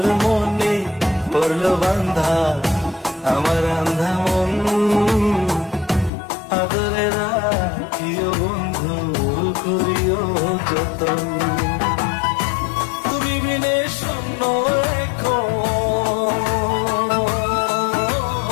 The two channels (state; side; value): drops out; right; at 6.1 s